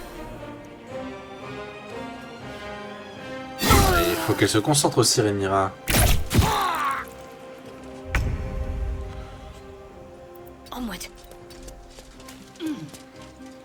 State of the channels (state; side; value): identical; both; correlation 1.00